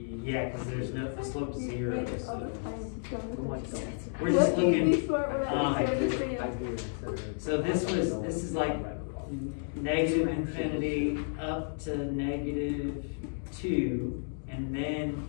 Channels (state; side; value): silent; right; digital silence